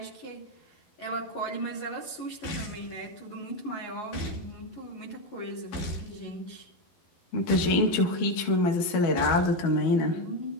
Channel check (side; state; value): right; late; 12 ms